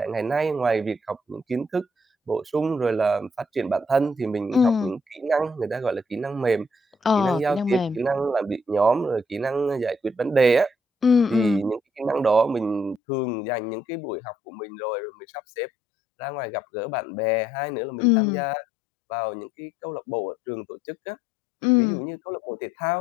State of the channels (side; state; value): right; drops out; at 13.0 s